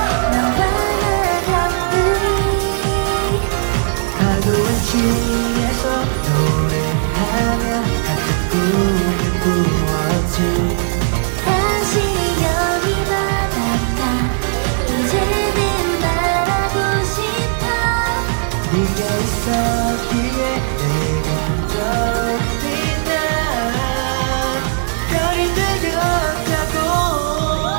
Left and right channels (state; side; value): silent; left; digital silence